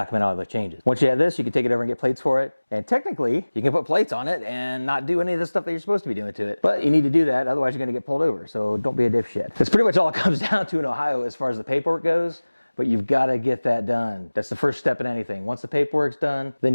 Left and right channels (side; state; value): both; inverted; correlation -1.00